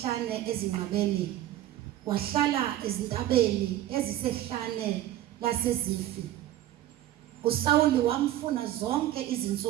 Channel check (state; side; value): quieter; left; 13.6 dB